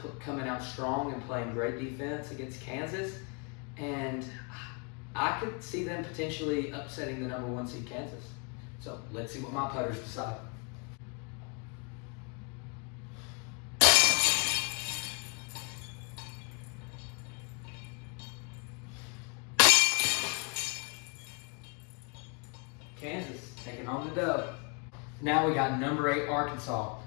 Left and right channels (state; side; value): quieter; right; 35.7 dB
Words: coming out strong and playing great defense against Kansas, and I could see them potentially upsetting the number 1 seed Kansas. So let's see what my putters decide. Kansas taking on the dub. Now we got number 8 Arkansas